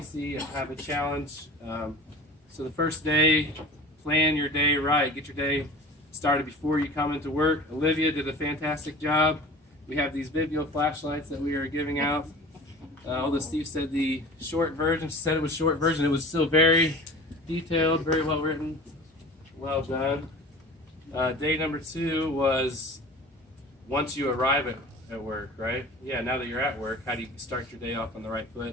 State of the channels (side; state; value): both; normal; correlation 0.40